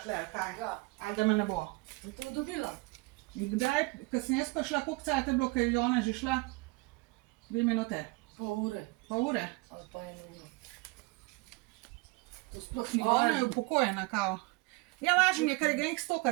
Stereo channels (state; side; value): quieter; left; 25.1 dB